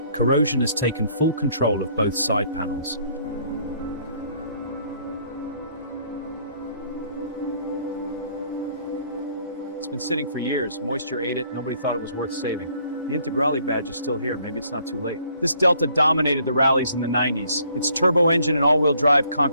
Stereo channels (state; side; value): inverted; both; correlation -0.64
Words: corrosion has taken full control of both side panels. It's been sitting for years, moisture ate it, nobody thought it was worth saving. The Integrale badge is still here, maybe it's not too late. This Delta dominated the rallies in the 90s. Its turbo engine and all-wheel drive